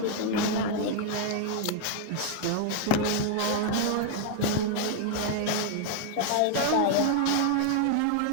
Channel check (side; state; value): both; different; correlation 0.00